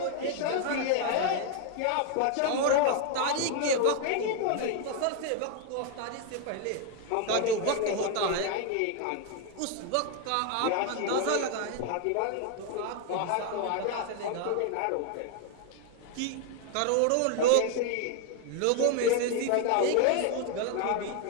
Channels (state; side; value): different; both; correlation 0.01